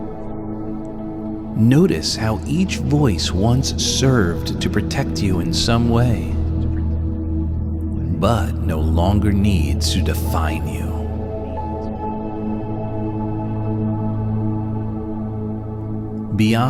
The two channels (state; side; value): identical; both; correlation 1.00